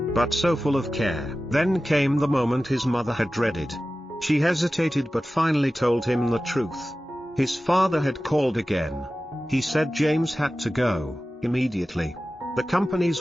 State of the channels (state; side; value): normal; both; correlation 0.95